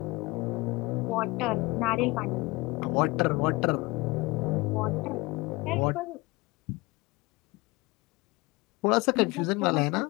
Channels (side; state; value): right; quieter; 23.5 dB